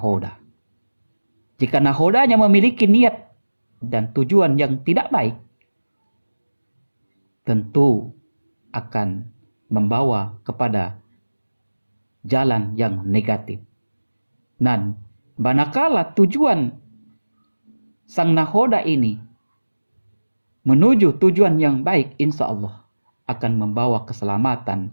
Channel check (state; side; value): inverted; both; correlation -1.00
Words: Jika nahodanya memiliki niat dan tujuan yang tidak baik, tentu akan membawa kepada jalan yang negatif. Dan manakala tujuan sang nahoda ini menuju tujuan yang baik, insya Allah akan membawa